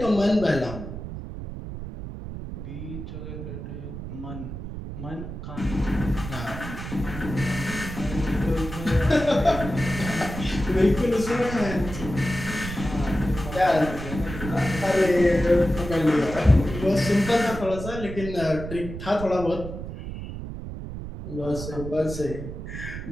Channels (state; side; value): noise; right; rumble, 8 dB below the sound